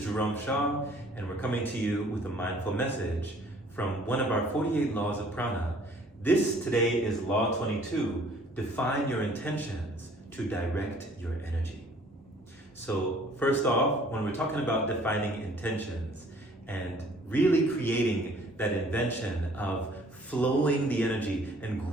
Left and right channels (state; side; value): normal; both; correlation 0.56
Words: Jerome Shaw, and we're coming to you with a mindful message from one of our 48 laws of prana. This today is Law 22. Define your intentions to direct your energy. So first off, when we're talking about defining intentions and really creating that invention of flowing the energy and